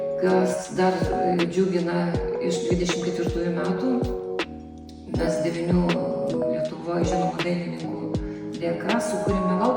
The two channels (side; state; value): both; identical; correlation 1.00